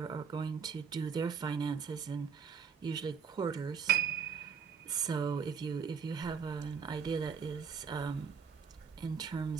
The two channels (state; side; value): quieter; left; 6.4 dB